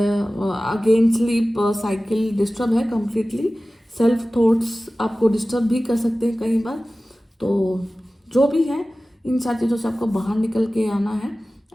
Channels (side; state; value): both; normal; correlation 0.96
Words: sleep cycle disturb है कम्प्लीटली, सेल्फ थॉट्स आपको डिस्टर्ब भी कर सकते हैं कई बार। तो जो भी है, इन सारी चीज़ों से आपको बाहर निकल के आना है।